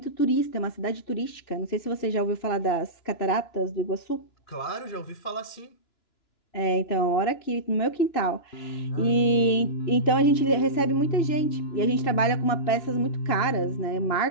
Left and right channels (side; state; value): right; late; 2.9 ms